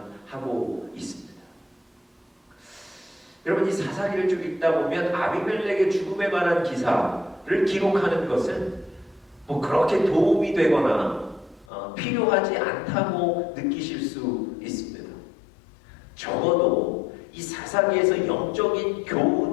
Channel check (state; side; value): drops out; right; at 11.7 s